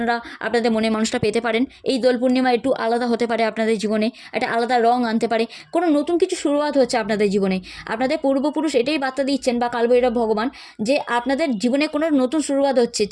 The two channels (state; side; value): identical; both; correlation 1.00